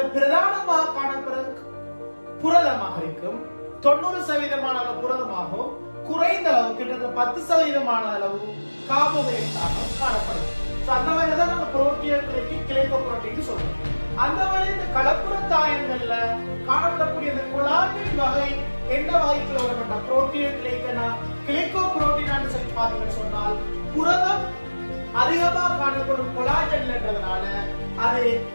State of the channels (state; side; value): inverted; both; correlation -1.00